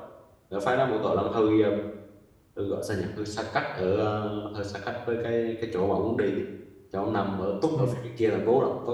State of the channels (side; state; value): both; identical; correlation 1.00